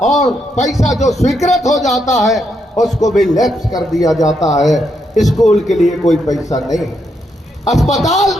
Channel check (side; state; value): both; normal; correlation 0.79